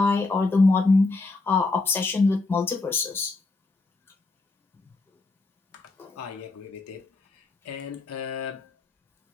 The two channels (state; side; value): quieter; right; 3.4 dB